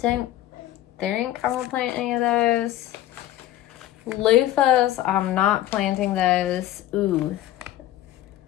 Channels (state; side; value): quieter; right; 13.7 dB